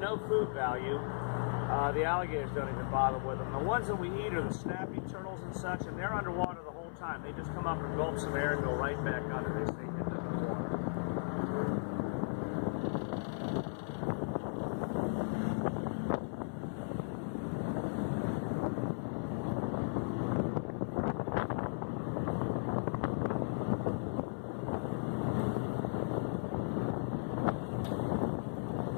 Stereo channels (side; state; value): right; silent; 54 dB below the other